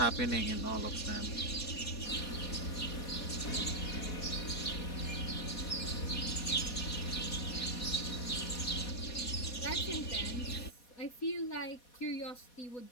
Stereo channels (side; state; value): right; late; 4.2 ms